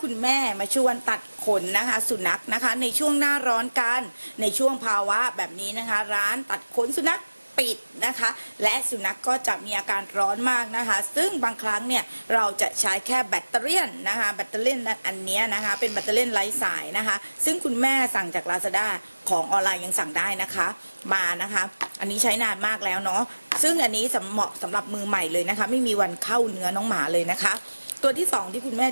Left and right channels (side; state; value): both; inverted; correlation -1.00